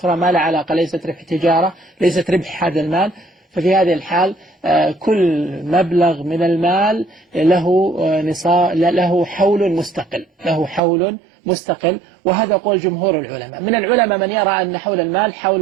ما لها علاقة، ليست ربح تجارة، ليست ربح هذا المال، ففي هذه الحال كل مبلغ من المال له حول مستقل، له حول مستقل، وهذا قول جمهور العلماء. من العلماء من يرى أن حول المال حول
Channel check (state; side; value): drops out; left; at 10.8 s